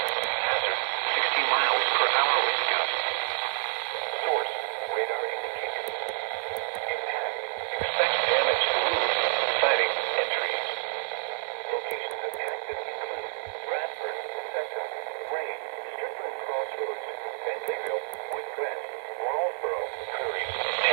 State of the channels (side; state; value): left; silent; 59 dB below the other